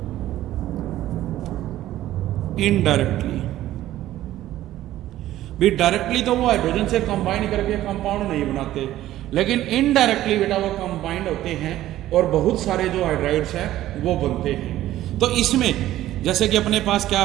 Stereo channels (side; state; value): left; quieter; 14.1 dB